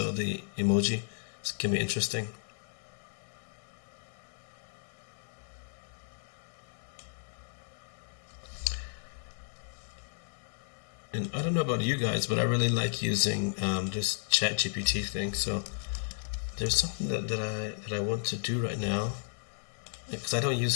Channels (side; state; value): right; silent; digital silence